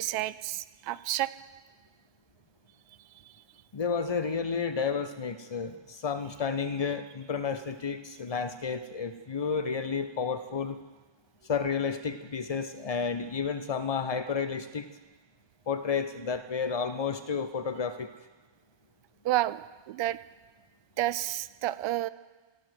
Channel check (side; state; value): right; late; 1.2 ms